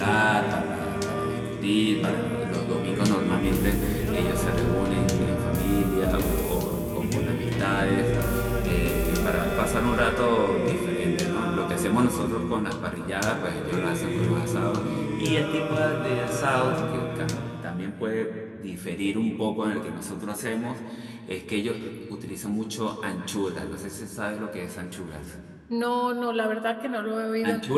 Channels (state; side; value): identical; both; correlation 1.00